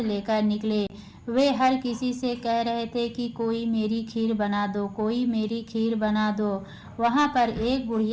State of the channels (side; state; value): both; identical; correlation 1.00